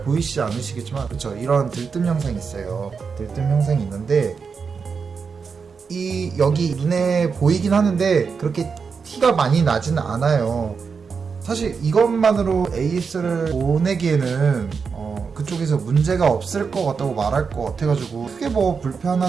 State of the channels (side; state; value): left; quieter; 5.6 dB